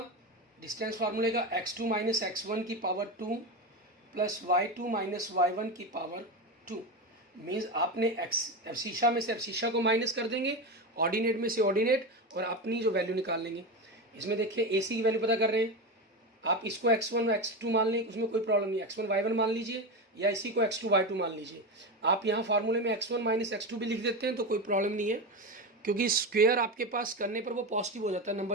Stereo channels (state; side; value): normal; both; correlation 0.18